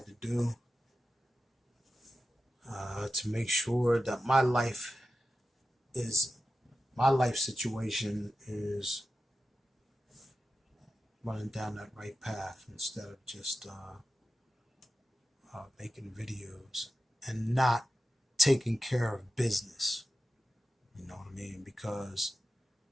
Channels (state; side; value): normal; both; correlation 0.93